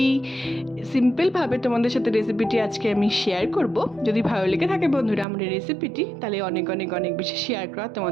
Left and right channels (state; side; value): drops out; left; at 5.2 s